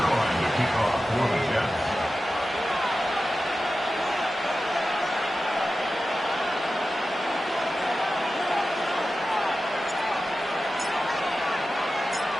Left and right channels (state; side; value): normal; both; correlation 0.93